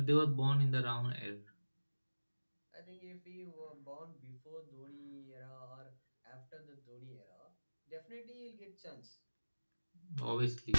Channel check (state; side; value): inverted; both; correlation -1.00